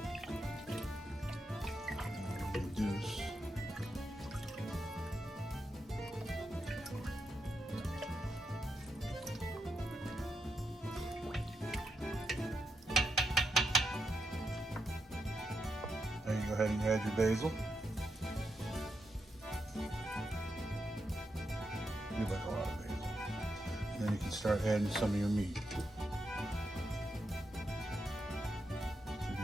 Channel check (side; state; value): both; normal; correlation 0.84